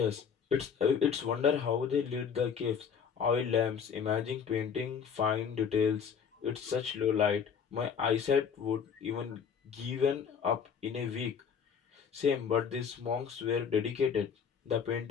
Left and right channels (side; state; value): right; quieter; 6.9 dB